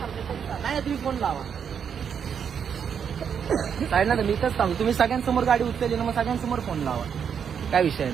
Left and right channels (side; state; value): left; quieter; 7.5 dB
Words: नाही तुम्ही फोन लावा साईड ना. मी इथंच सांगू, तुम्ही सगळ्यांसमोर गाडी उचलली ना, मग सगळ्यांसमोर फोन लावा, काय विषय